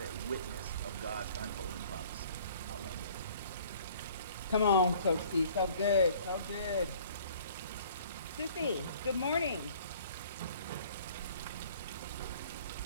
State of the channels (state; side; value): inverted; both; correlation -0.53